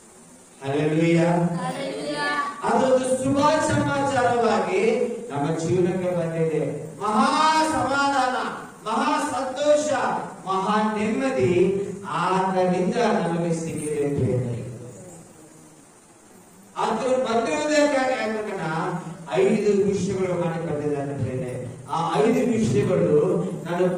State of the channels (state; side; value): identical; both; correlation 1.00